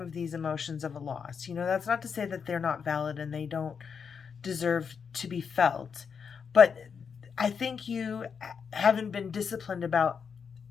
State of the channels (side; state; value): right; quieter; 6.4 dB